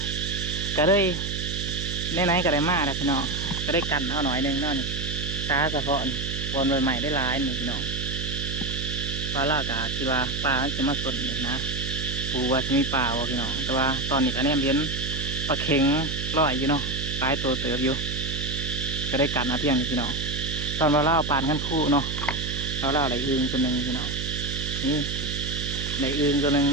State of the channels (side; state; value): right; noise; hum, 4 dB below the sound